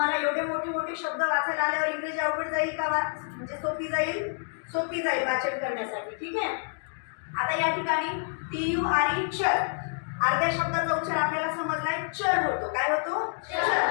एवढे मोठे मोठे शब्द वाचायला आल्यावर इंग्रजी अवघड जाईल का? म्हणजे सोपी जाईल वाचन करण्यासाठी. ठीक आहे. आता या ठिकाणी TURE चर. अर्ध्या शब्दाचा उच्चार आपल्याला समजलाय, चर होतो. काय होतो? चर.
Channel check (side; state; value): right; silent; 59 dB below the other